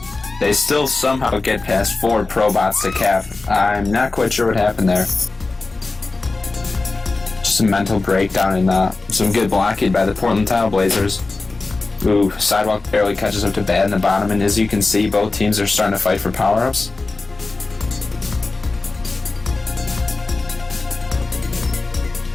They still somehow get past 4 ProBots to cap. I'm not quite sure what happened there. Just a mental breakdown and some good blocking by the Portland Tile Blazers. Ooh, Sidewalk barely catches up to Bad in the bottom, and as you can see, both teams are starting to fight for power-ups.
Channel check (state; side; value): quieter; right; 3.6 dB